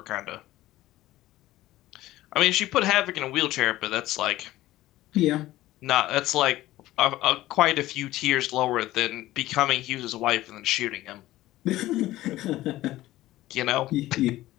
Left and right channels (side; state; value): right; quieter; 16.0 dB